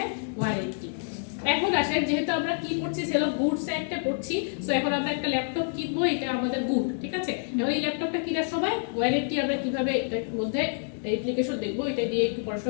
ওয়ারেন্টি। এখন আসেন, যেহেতু আমরা কি পড়ছি, সেল অফ গুডস একটা পড়ছি, সো এখন আমরা একটা ল্যাপটপ কিনবো, এটা আমাদের গুড, ঠিক আছে? এখন এই ল্যাপটপটা কেনার সময় ওয়ারেন্টি আমরা কিভাবে এটার মধ্যে অ্যাপ্লিকেশন দেখবো, এটা দিয়ে একটু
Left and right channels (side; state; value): right; silent; 57 dB below the other